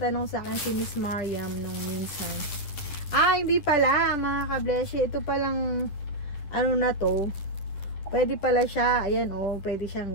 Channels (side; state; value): right; late; 11 ms